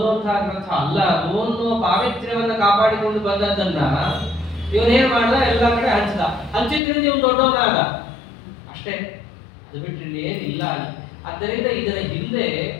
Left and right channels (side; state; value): right; drops out; at 6.8 s